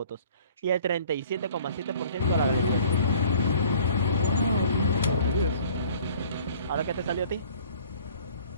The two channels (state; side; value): inverted; both; correlation -0.52